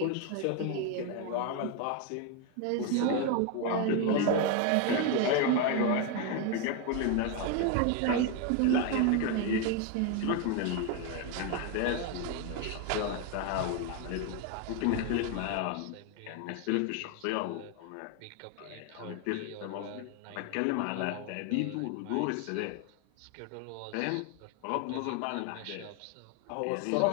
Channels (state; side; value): different; both; correlation 0.01